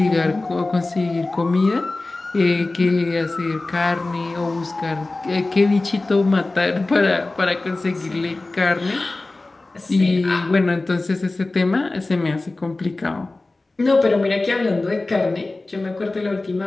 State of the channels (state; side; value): quieter; right; 3.1 dB